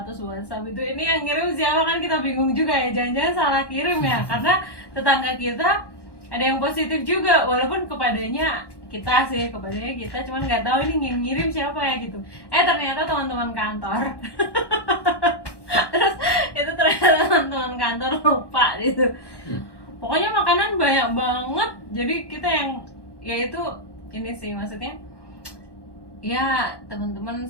WhatsApp itu, ini yang ngirim siapa kan kita bingung juga ya, jangan-jangan salah kirim ya, karena tetangga kita ada yang positif juga, walaupun kepadanya kita, cuman nggak tahu ini yang ngirim siapa ya gitu. Ternyata teman-teman kantor. Terus itu ternyata teman-teman kantor lupa gitu. Pokoknya makanan banyak banget, jadi kita yang ya itu ini sih maksudnya ya, teman-teman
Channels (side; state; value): right; late; 1.1 ms